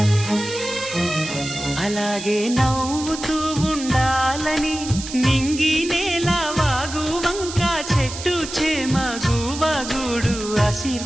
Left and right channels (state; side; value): noise; right; hiss, 10 dB below the sound